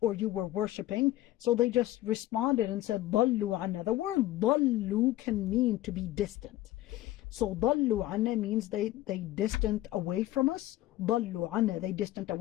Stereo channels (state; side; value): quieter; right; 15.4 dB